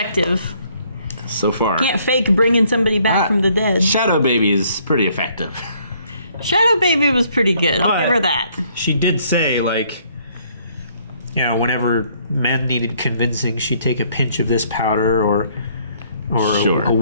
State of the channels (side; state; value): both; inverted; correlation -0.65